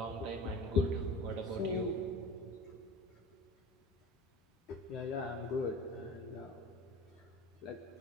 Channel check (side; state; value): both; normal; correlation 0.35